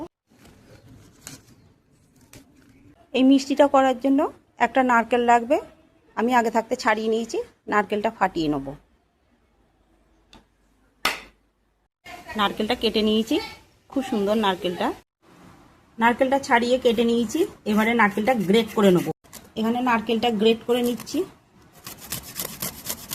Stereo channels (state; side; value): identical; both; correlation 1.00